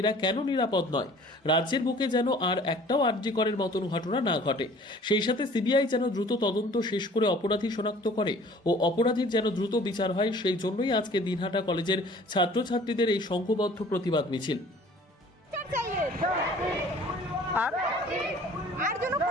কেন নিরাপদ নয়, রাজ্যের বুকে যেন আর একটাও আরজিকরের মতন ঘটনা না ঘটে, সেই সাথে সিবিআই যেন দ্রুত তদন্ত শেষ করে অপরাধী শনাক্ত করে ও অপরাধীর যেন দ্রুত বিচার হয়, সেই জন্যই আজকে দিনহাটা কলেজের ছাত্রছাত্রীদের এই সংঘবদ্ধ প্রতিবাদ মিছিল। আর যেন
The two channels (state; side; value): normal; both; correlation 0.50